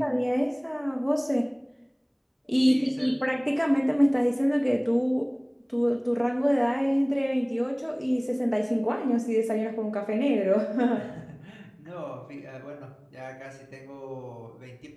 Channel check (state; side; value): identical; both; correlation 1.00